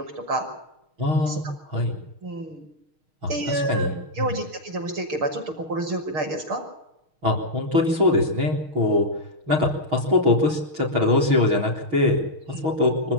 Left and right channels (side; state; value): left; late; 6.3 ms